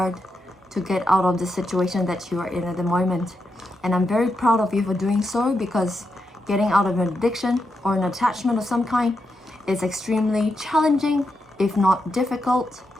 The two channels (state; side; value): normal; both; correlation 0.85